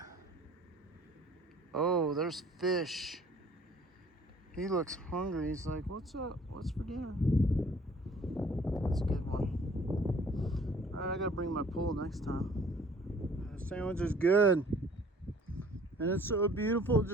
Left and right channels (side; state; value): both; normal; correlation 0.54